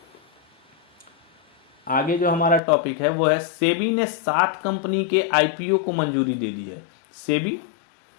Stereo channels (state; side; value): drops out; right; at 2.6 s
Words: आगे जो हमारा टॉपिक है वो है, सेबी ने 7 कंपनी के आईपीओ को मंजूरी दे दी है। सेबी,